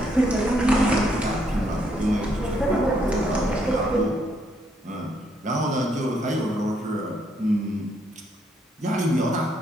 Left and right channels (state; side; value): normal; both; correlation 0.73